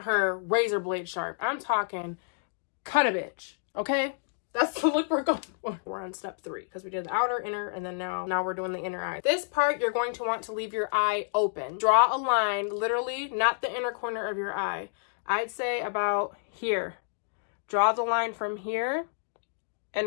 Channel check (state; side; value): silent; right; digital silence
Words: her razor blade sharp. I'm talking cut a bitch, okay? That's the look we're going for. We're on step 3 because we did the outer, inner, and then now we're doing the inner eye. This part, you're going to want to leave your eye open. Draw a line, literally, not the inner corner of your eye. I'd say about here. Draw the line from here